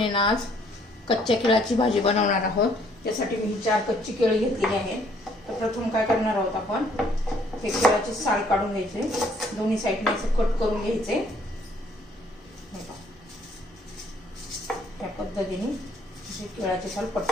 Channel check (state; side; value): normal; both; correlation 0.63